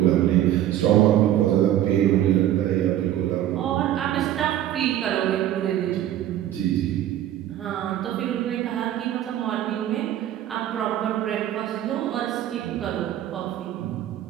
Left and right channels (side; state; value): left; quieter; 12.2 dB